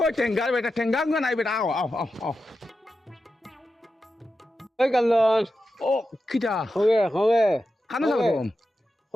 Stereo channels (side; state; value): both; normal; correlation 0.90